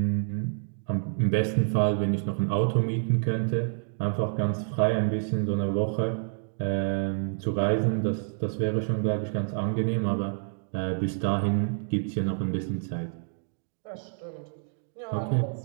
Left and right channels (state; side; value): silent; left; digital silence